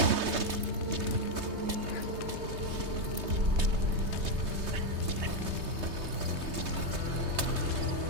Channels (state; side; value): late; left; 3.2 ms